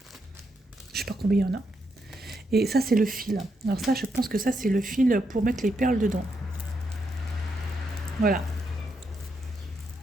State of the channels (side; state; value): both; normal; correlation 0.81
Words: Je sais pas combien il y en a. Et ça, c'est le fil. Alors ça, je pense que ça, c'est le fil pour mettre les perles dedans. Voilà.